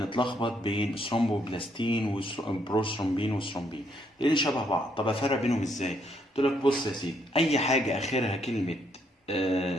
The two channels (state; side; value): normal; both; correlation 0.72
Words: بين ثرومبوبلاستين وبروثرومبين وثرومبين لان شبه بعض. طب افرق بينهم ازاي؟ قلت لك بص يا سيدي، اي حاجه اخرها كلمه